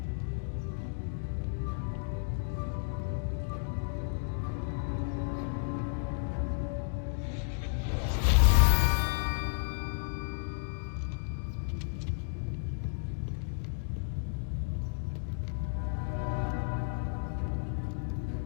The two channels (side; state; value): right; silent; digital silence